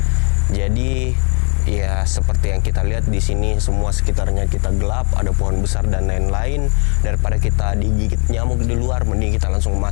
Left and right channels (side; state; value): right; quieter; 36.3 dB